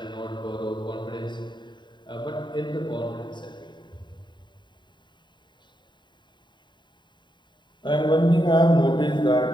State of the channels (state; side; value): late; right; 0.22 ms